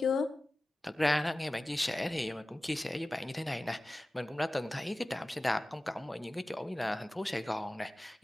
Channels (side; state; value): both; normal; correlation 0.96